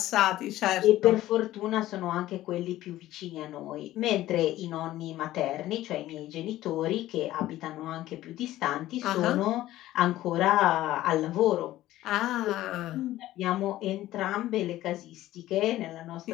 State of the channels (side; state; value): right; quieter; 15.0 dB